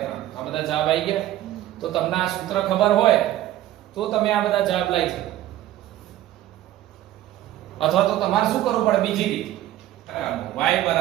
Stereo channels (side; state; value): left; quieter; 13.8 dB